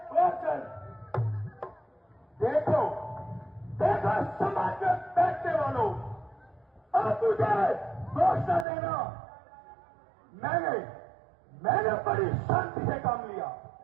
पहुंचल देखो देखो समाज में बैठने वालों अब तुझे घोषणा देना मैंने बड़ी शांति से काम लिया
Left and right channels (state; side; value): drops out; left; at 8.7 s